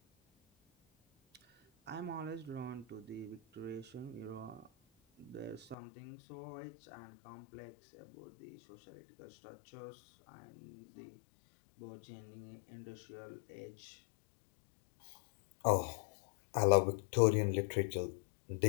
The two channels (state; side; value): drops out; right; at 5.8 s